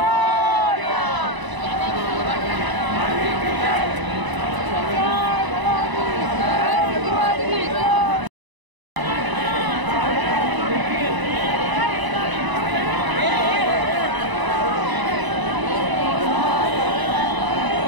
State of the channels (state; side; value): late; left; 1.0 ms